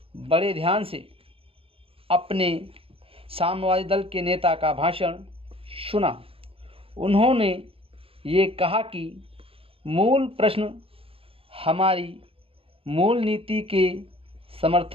बड़े ध्यान से अपने साम्यवादी दल के नेता का भाषण सुना। उन्होंने ये कहा कि मूल प्रश्न हमारी मूल नीति के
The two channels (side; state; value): left; late; 0.27 ms